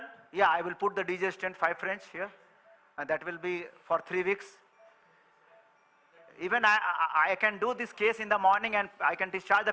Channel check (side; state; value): both; identical; correlation 1.00